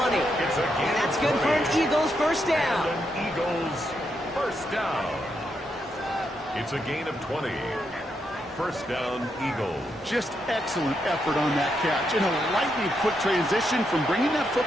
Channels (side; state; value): both; normal; correlation 0.81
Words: And that's good for an Eagles first down. Eagles first down. It's a gain of 20. First down, Eagles. Just excellent effort on that catch. And a lightning quick transition from bringing that